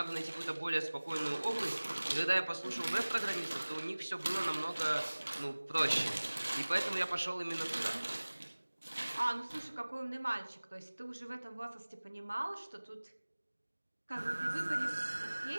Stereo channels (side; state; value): both; inverted; correlation -1.00